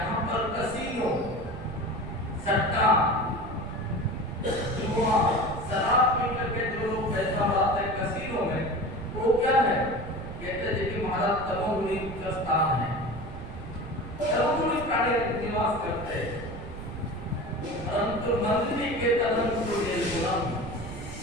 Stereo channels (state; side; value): noise; right; rumble, 11 dB below the sound